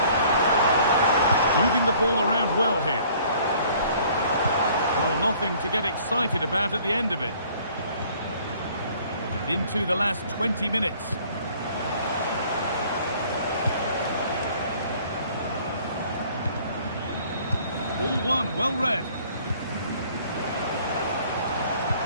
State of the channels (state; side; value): inverted; both; correlation -0.56